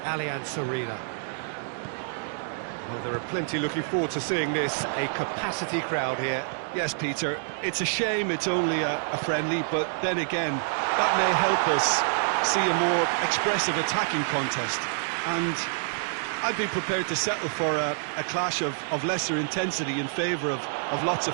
Arena. Well, there are plenty looking forward to seeing this, a capacity crowd here. Yes, Peter, it's a shame it's only a friendly, but then again, that may help us see a more expressive attacking contest. And I'd be prepared to settle for a clash of lesser intensity in favour of lots of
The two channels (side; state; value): left; silent; digital silence